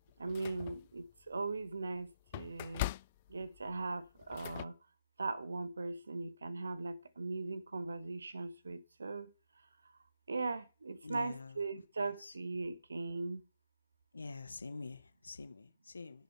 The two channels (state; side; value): inverted; both; correlation -0.84